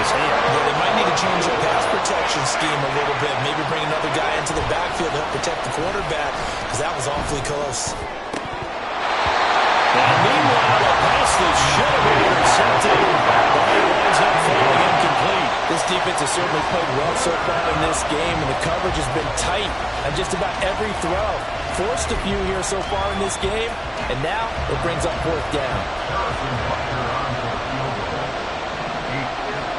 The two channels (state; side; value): identical; both; correlation 1.00